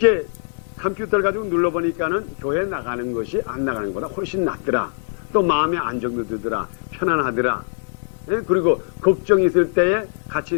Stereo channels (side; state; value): right; silent; digital silence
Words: 컴퓨터를 가지고 눌러보니까는 교회 나가는 것이 안 나가는 것보다 훨씬 낫더라. 또 마음에 안정도 들더라. 편안하더라. 그리고 걱정이 있을 때에 같이